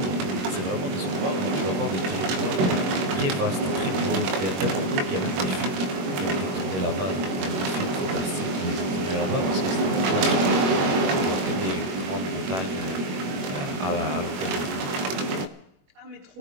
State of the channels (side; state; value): left; late; 22 ms